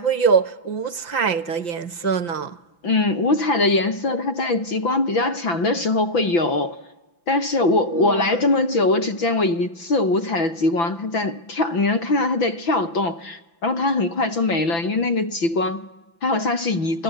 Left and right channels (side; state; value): right; late; 6.0 ms